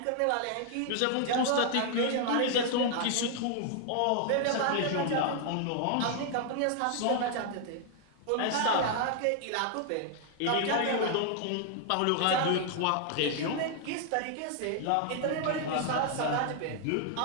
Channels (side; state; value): both; different; correlation 0.00